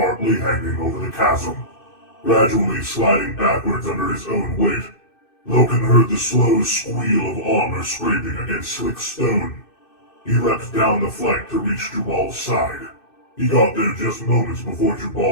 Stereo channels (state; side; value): late; right; 2.6 ms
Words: hanging over the chasm. Gradually sliding backwards under his own weight, Loken heard the slow squeal of armor scraping against slick stone. He leapt down the flank to reach Jubal's side. He got there just moments before